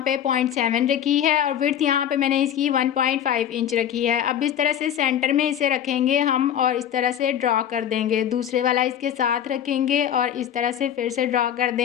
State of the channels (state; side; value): quieter; right; 10.0 dB